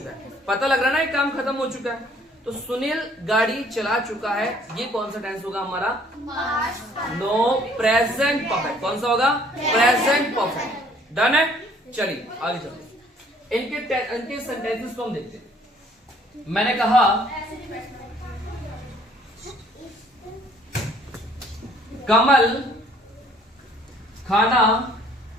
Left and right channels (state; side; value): normal; both; correlation 0.59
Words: है। पता लग रहा है ना ये काम खत्म हो चुका है, तो सुनील गाड़ी चला चुका है, ये कौन सा टेंस होगा हमारा? No, present perfect. कौन सा होगा? Present perfect. डन है। चलिए आगे चलते हैं। इनके सेंटेंसेस को हम देखते हैं। मैंने कहा कमल खाना